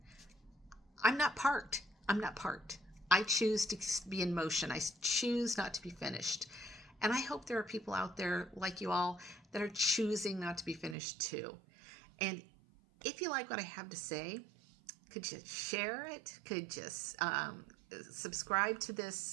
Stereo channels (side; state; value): left; drops out; at 11.0 s